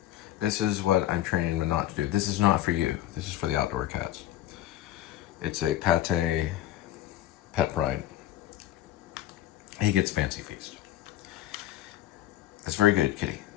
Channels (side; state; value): right; quieter; 13.3 dB